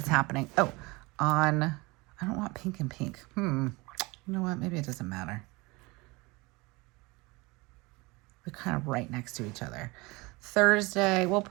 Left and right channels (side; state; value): left; quieter; 24.3 dB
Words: happening? Oh, I don't want pink and pink. You know what? Maybe it doesn't matter. They're kind of right next to each other. Thursday, we'll